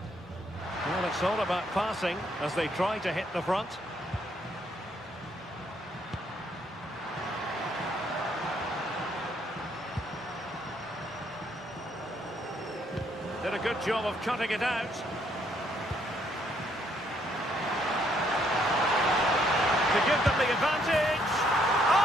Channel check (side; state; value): both; normal; correlation 0.70